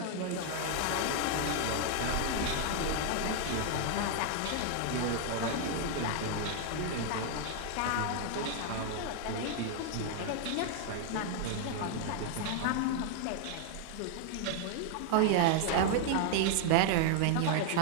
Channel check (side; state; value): both; different; correlation 0.00